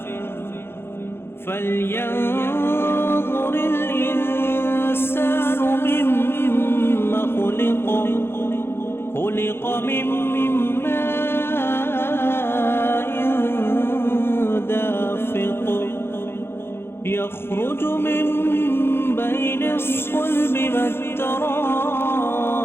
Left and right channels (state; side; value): late; right; 0.11 ms